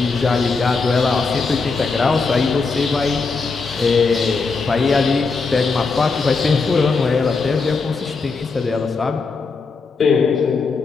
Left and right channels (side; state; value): right; quieter; 4.4 dB